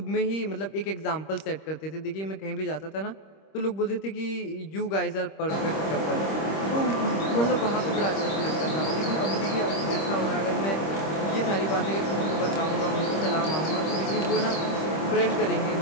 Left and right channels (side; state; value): right; late; 26 ms